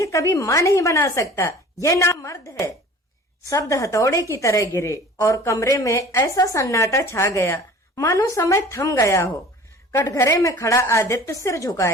कभी मां नहीं बना सकता, यह नामर्द है। शब्द हथौड़े की तरह गिरे और कमरे में ऐसा सन्नाटा छा गया मानो समय थम गया हो। कटघरे में खड़ा आदित्य सिर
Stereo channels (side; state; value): both; normal; correlation 0.45